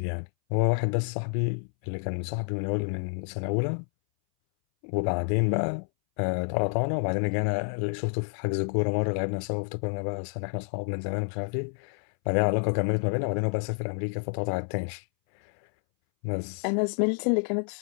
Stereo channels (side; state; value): right; silent; 59 dB below the other